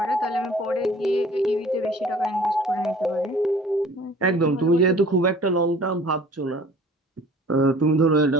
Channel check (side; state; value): both; normal; correlation 0.49